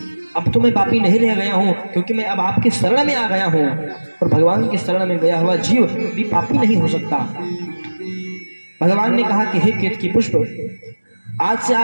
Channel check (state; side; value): inverted; both; correlation -1.00